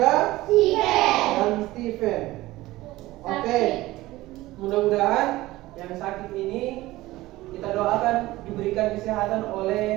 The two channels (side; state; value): left; quieter; 17.9 dB